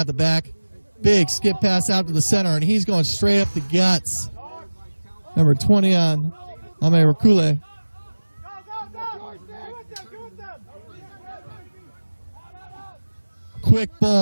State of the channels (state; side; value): inverted; both; correlation -1.00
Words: the back. Big skip pass out to the center, and he's going straight up the guts. Number 20 on Ame Rakule. Quick